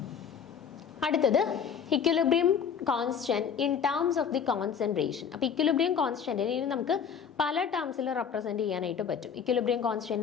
അടുത്തത് equilibrium constant in terms of the concentration. അപ്പോൾ ഇക്വിലിബ്രിയം കോൺസ്റ്റന്റിനെ ഇനി നമുക്ക് പല ടേംസിൽ റെപ്രസെന്റ് ചെയ്യാനായിട്ട് പറ്റും. ഇക്വിലിബ്രിയം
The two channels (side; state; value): right; quieter; 7.2 dB